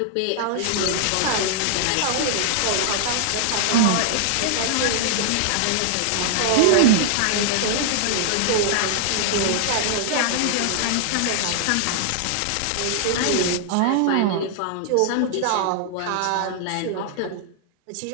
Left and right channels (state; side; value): different; both; correlation -0.01